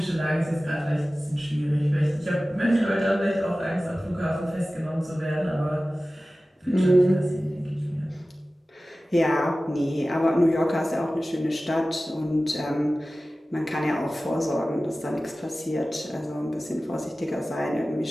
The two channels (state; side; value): normal; both; correlation 0.96